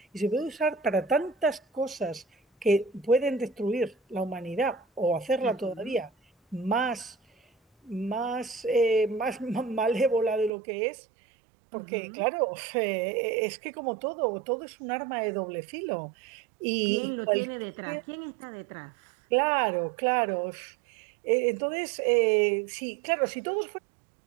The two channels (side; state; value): left; drops out; at 10.5 s